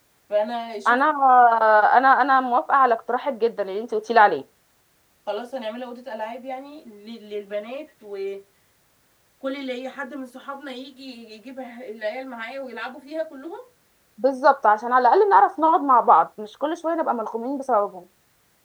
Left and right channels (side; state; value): both; identical; correlation 1.00